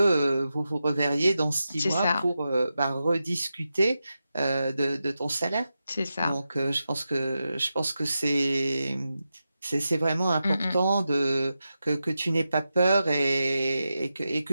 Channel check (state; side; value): inverted; both; correlation -0.90